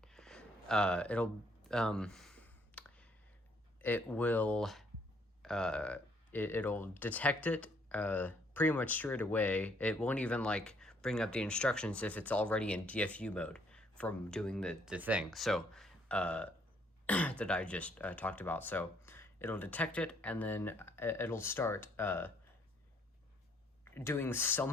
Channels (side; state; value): both; normal; correlation 0.66